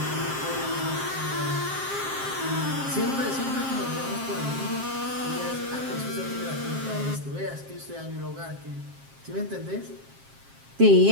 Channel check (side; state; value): left; late; 7.5 ms